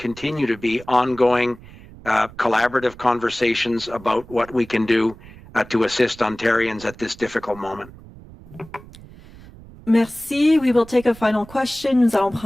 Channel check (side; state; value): right; noise; rumble, 20 dB below the sound